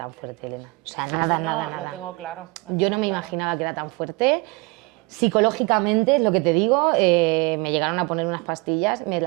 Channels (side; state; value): left; quieter; 25.1 dB